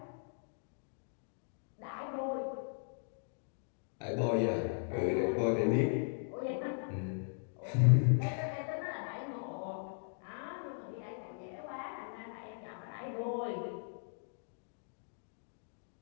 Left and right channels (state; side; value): silent; right; digital silence